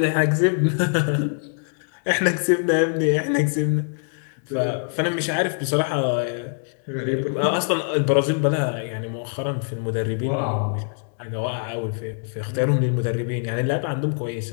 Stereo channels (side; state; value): right; silent; digital silence